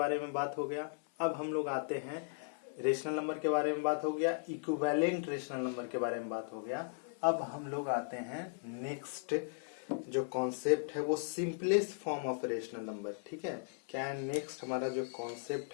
में बात हो गया। अब हम लोग आते हैं, रेशनल नंबर के बारे में बात हो गया, इक्विवेलेंट रेशनल नंबर के बारे में बात हो गया। अब हम लोग आते हैं नेक्स्ट जो कॉन्सेप्ट है वो simplest form of rational number, ठीक है। क्या है नेक्स्ट हमारा जो कॉन्सेप्ट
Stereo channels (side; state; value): right; silent; 53 dB below the other